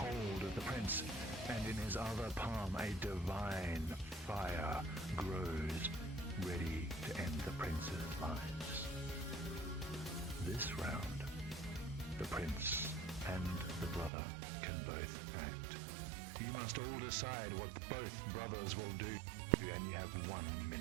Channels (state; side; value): drops out; left; at 14.1 s